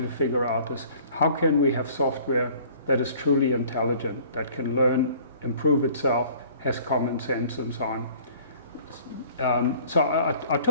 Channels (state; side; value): inverted; both; correlation -0.52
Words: to figure out, is how can we have software that is truly intelligent, that can learn, improve itself, has common sense, and so on. So I